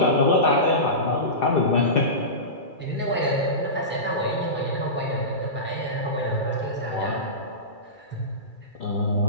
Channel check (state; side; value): late; right; 2.3 ms